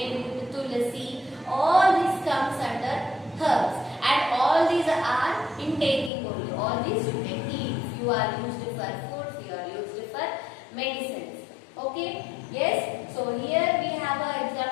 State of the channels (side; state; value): right; drops out; at 6.1 s